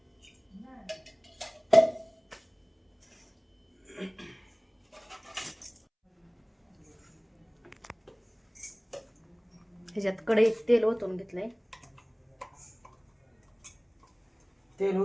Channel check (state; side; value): identical; both; correlation 1.00